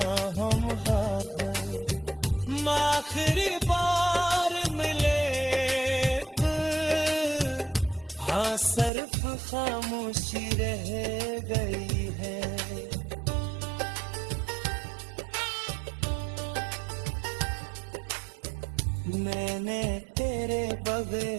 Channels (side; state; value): left; drops out; at 8.9 s